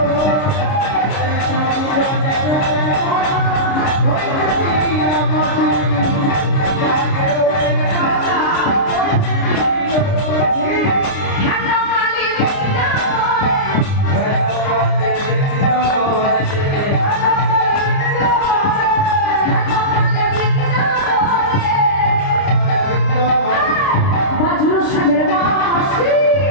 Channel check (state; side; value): late; right; 29 ms